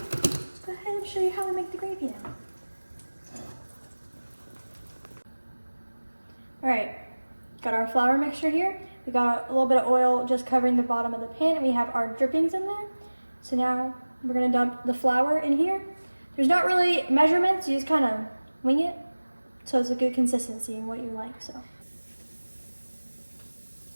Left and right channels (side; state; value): both; inverted; correlation -1.00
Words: ahead and show you how we make the gravy now. All right, got our flour mixture here. We got a little bit of oil just covering the bottom of the pan, and we have our drippings in there. So now we're gonna dump the flour in here. There's not really measurements, you just kind of wing it. So it's a good consistency and what you like, so.